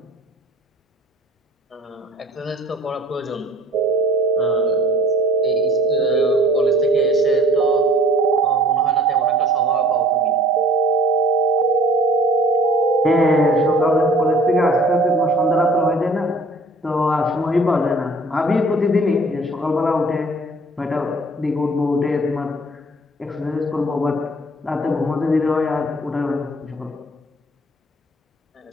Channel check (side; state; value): both; normal; correlation 0.52